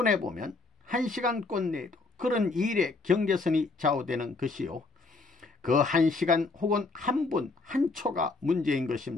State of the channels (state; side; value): quieter; right; 3.7 dB